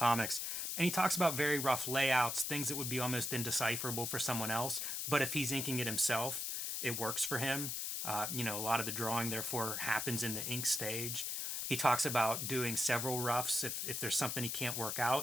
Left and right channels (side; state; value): left; noise; hiss, 2 dB below the sound